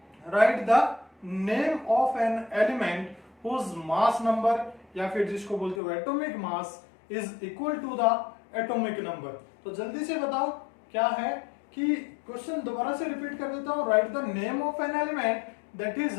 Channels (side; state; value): right; drops out; at 5.8 s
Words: write the name of an element whose mass number या फिर जिसको बोलते हो atomic mass is equal to the atomic number. तो जल्दी से बताओ क्या है कि क्वेश्चन दोबारा से रिपीट कर देता हूं, right the name of an element that is